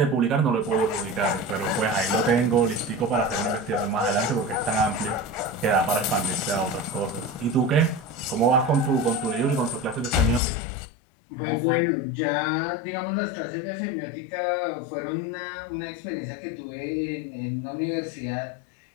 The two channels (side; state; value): right; drops out; at 10.4 s